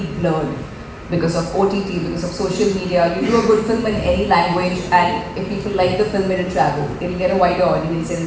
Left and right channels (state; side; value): identical; both; correlation 1.00